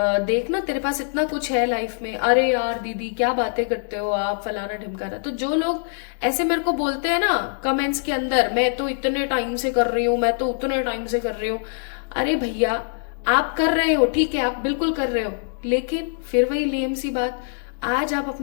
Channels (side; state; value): right; silent; digital silence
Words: देखना तेरे पास इतना कुछ है लाइफ में। अरे यार दीदी क्या बातें करते हो आप, फलाना ढिमकाना। तो जो लोग ऐसे मेरे को बोलते हैं ना कमेंट्स के अंदर, मैं तो इतने टाइम से कर रही हूँ, मैं तो उतने टाइम से कर रही हूँ। अरे भैया आप कर रहे हो, ठीक है, आप बिल्कुल कर रहे हो, लेकिन फिर वही लेम सी बात, आज आप